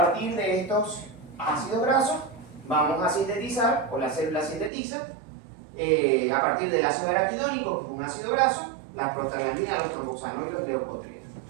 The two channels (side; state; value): left; drops out; at 4.7 s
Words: de estos ácidos grasos vamos a sintetizar, o la célula sintetiza, a partir del ácido araquidónico, que es un ácido graso, las prostaglandinas, los tromboxanos y los leucotrienos.